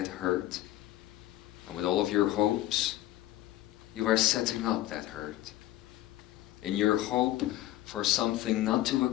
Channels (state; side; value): quieter; right; 14.9 dB